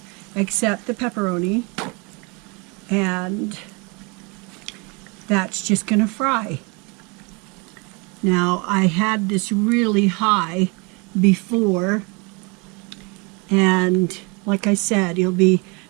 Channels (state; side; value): quieter; left; 30.2 dB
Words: except the pepperoni. And that's just going to fry. Now, I had this really high before, and like I said, it'll be